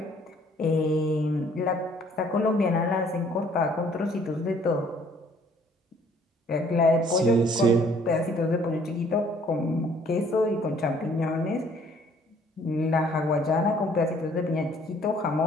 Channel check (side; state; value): both; normal; correlation 0.60